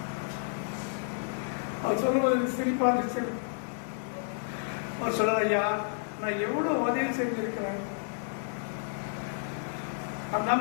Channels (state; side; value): silent; right; 57 dB below the other